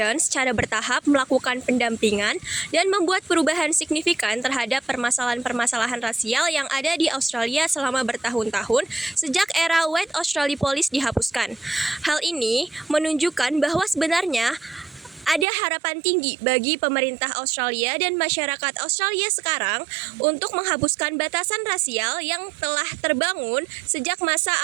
secara bertahap melakukan pendampingan dan membuat perubahan signifikan terhadap permasalahan-permasalahan rasial yang ada di Australia selama bertahun-tahun sejak era White Australia Police dihapuskan. Hal ini menunjukkan bahwa sebenarnya ada harapan tinggi bagi pemerintah Australia dan masyarakat Australia sekarang untuk menghapuskan batasan rasial yang telah terbangun sejak masa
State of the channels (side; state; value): left; drops out; at 15.5 s